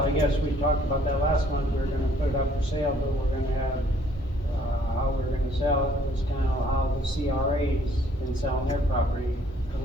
guess we talked about that last month, we were gonna put it up for sale, but we're gonna have, how we're gonna sell it was kind of how the CRA's been selling their property, to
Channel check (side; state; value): both; normal; correlation 0.61